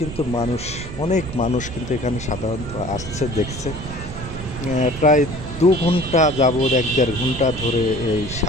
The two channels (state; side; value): noise; right; rumble, 11 dB below the sound